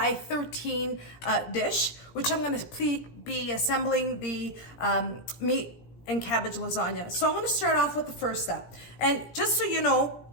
dish, which I'm gonna be assembling the meat and cabbage lasagna. So I'm gonna start off with the first step. And just so you know,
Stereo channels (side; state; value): right; late; 17 ms